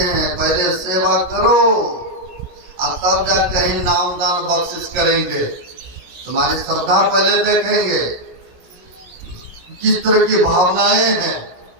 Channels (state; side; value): late; left; 17 ms